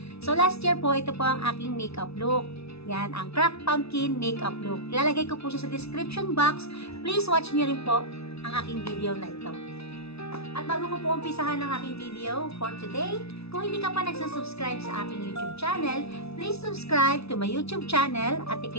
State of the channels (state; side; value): late; right; 0.79 ms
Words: So last year po ito po ang aking makeup look. Yan ang cracked pumpkin makeup look. Ilalagay ko po siya sa description box. Please watch niyo rin po ang aking video na ito. At bago ko po umpisahan ang aking video for today, kung hindi ka pa nagsusubscribe sa aking YouTube channel, please subscribe to my YouTube channel at